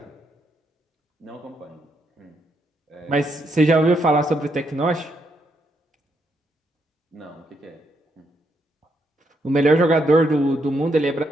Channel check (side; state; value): both; normal; correlation 0.78